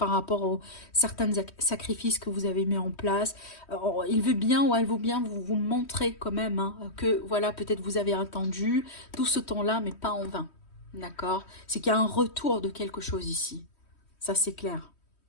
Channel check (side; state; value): right; late; 3.1 ms